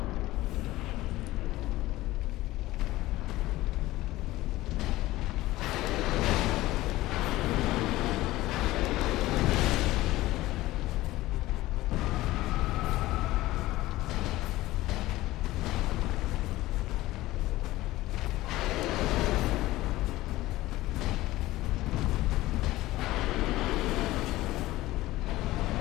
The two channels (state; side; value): quieter; right; 17.4 dB